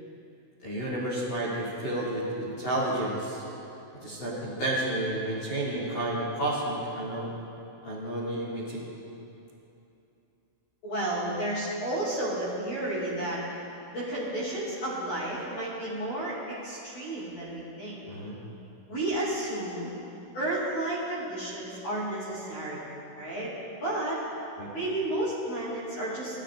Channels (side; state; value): right; late; 16 ms